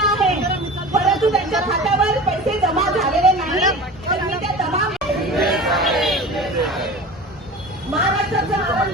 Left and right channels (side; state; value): both; normal; correlation 0.35